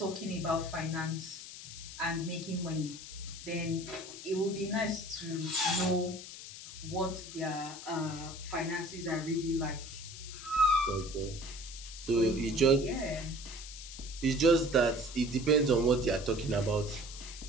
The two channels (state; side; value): noise; left; hiss, 12 dB below the sound